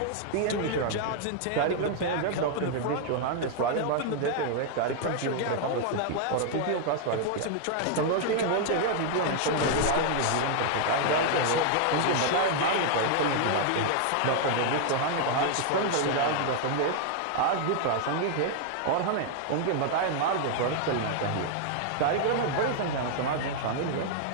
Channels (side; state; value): both; different; correlation 0.00